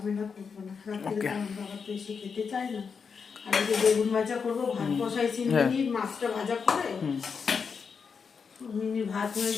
করবো না, রাত্রিরে আমার বাবা তো এসে খেতে চায় না। আর এই যে বেগুন ভাজা করবো, ভাত বসাইছি মিনিট, মাছটা ভাজা করে মিনিট ভাত হয়ে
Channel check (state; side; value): quieter; right; 5.8 dB